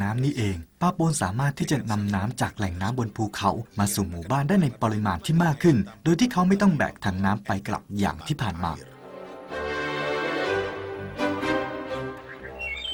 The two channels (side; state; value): both; identical; correlation 1.00